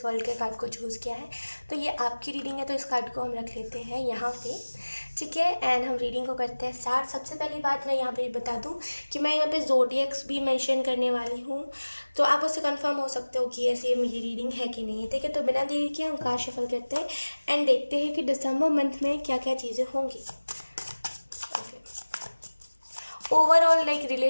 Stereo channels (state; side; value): inverted; both; correlation -1.00